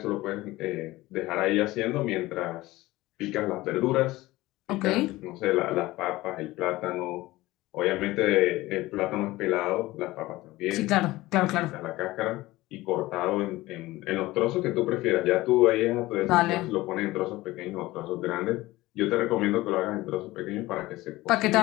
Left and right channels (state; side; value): quieter; right; 18.6 dB